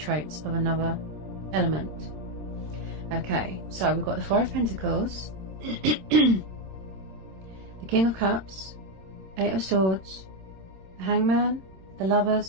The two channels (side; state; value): left; late; 26 ms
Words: of another element. Okay, so we've got the Four of Pentacles, the King of Cups, Eight of Swords, the Hangman, the